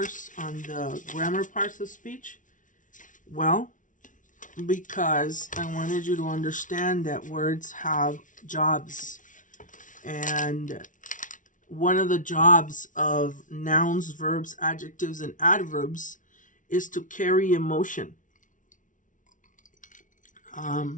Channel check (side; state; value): right; late; 0.38 ms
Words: on the grammar parts of speech? Well, because I wanted you to understand that words have jobs. And one of the jobs of nouns, verbs, adjectives, and adverbs is to carry emotion.